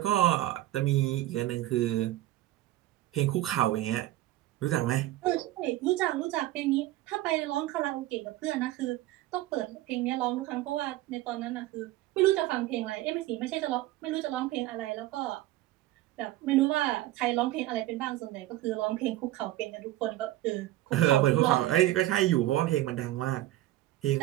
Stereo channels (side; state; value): left; quieter; 15.6 dB